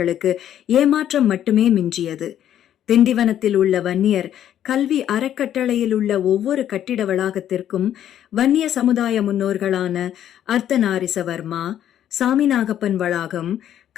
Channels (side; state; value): right; quieter; 10.8 dB